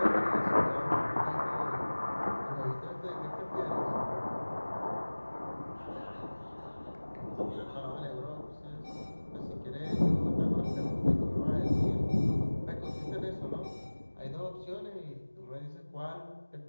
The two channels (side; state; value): both; inverted; correlation -1.00